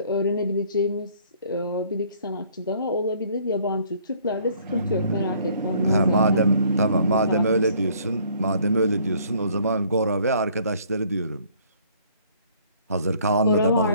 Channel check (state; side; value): inverted; both; correlation -0.60